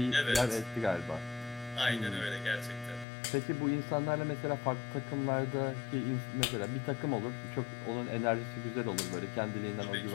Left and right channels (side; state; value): right; drops out; at 3.1 s